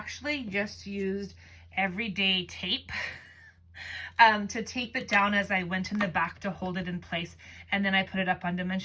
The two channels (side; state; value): both; identical; correlation 1.00